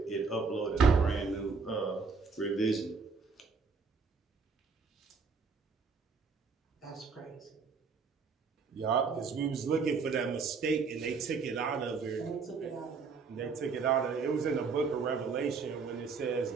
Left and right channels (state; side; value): quieter; left; 5.0 dB